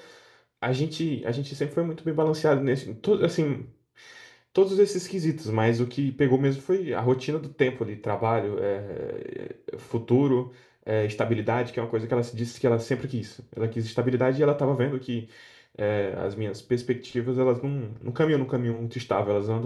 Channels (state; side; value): identical; both; correlation 1.00